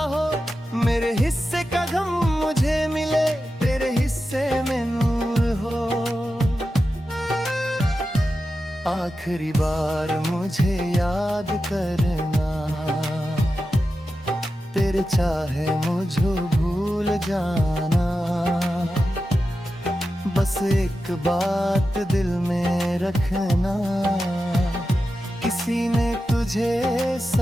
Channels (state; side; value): normal; both; correlation 0.91